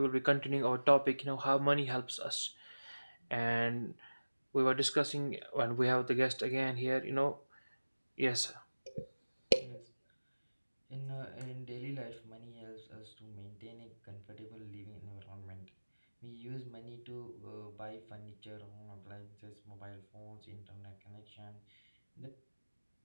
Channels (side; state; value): both; inverted; correlation -1.00